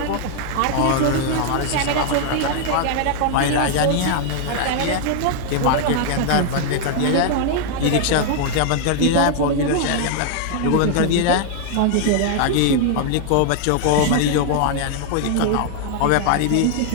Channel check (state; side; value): different; both; correlation 0.00